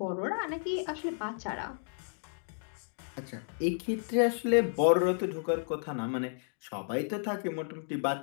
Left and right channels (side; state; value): right; silent; digital silence